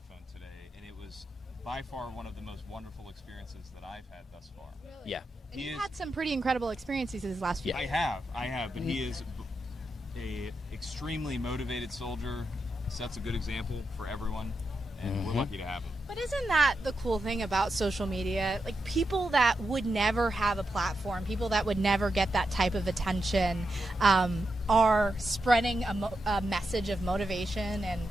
today, and it was by far one of the most wonderful experiences that I've had thus far. Really? Yeah. And you've had some pretty incredible experiences these last few years. I have, but he is a extremely motivated soldier, sets a good example for everyone, and we're lucky to have him. But isn't that the cool thing about social media? Like, people that would never have a platform, people that would never get that type of attention, are spreading a message of motivation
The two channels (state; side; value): normal; both; correlation 0.86